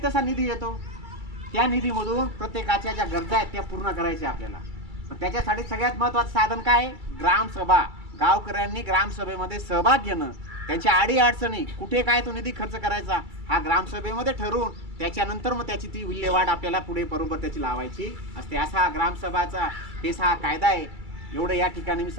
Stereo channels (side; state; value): left; late; 2.3 ms